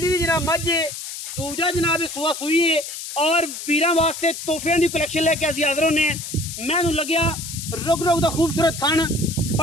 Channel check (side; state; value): left; noise; hiss, 8 dB below the sound